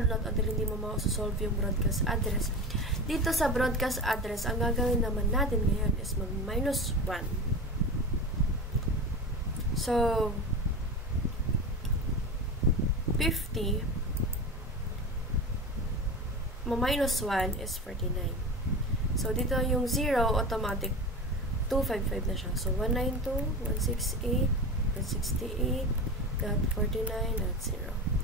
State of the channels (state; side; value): normal; both; correlation 0.26